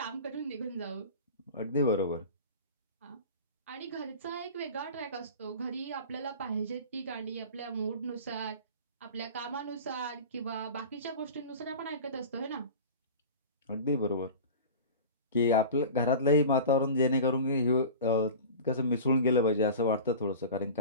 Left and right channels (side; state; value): both; inverted; correlation -0.35